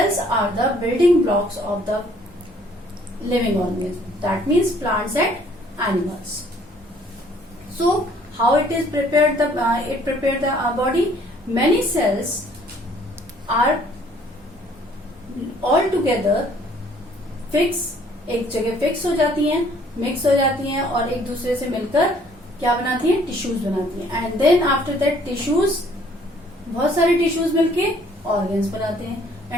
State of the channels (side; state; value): both; normal; correlation 0.60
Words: are the building blocks of the living organism. That means plants and animals. So how it is prepared? It prepared the body. Many cells are all together fix, एक जगह fix हो जाती हैं, mix हो जाती हैं और एक दूसरे से मिलकर क्या बनाती हैं? टिश्यूज बनाती हैं. And then after that tissues, बहुत सारे टिश्यूज मिलके ऑर्गन्स बनाते हैं.